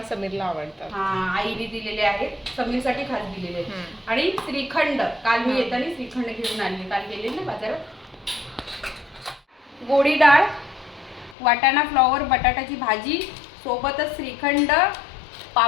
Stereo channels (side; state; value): right; drops out; at 11.4 s